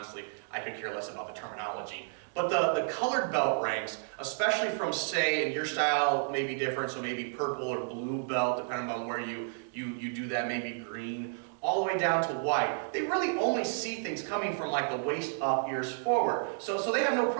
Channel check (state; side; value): silent; left; digital silence